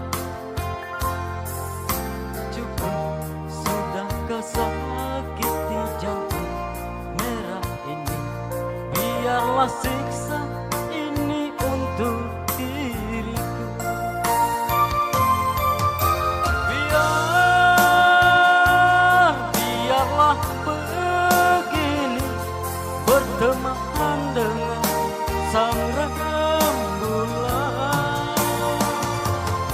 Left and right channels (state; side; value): identical; both; correlation 1.00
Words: Cukup sudah kau sakiti jantung merah ini. Biarlah siksa ini untuk diriku. Biarlah begini, berteman dengan sang rembulan.